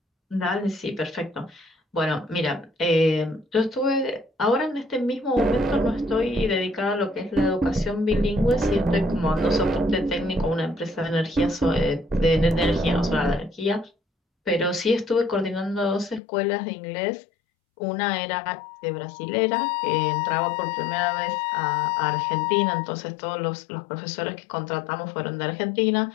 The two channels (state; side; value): drops out; right; at 16.2 s